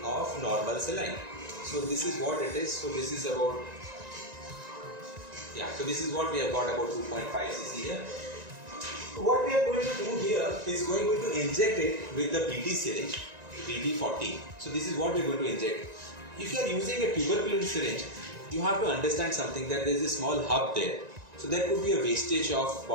of normal saline. So this is what it is. So this is about, yeah, so this is what we have got, about 2.5 cc here. What we are going to do here is going to inject it with the BT syringe, BT40. So this is what we are going to inject. If you are using a tuberculin syringe, you have to understand something, that there is a small hub there. So there could be a wastage of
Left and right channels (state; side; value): late; left; 1.9 ms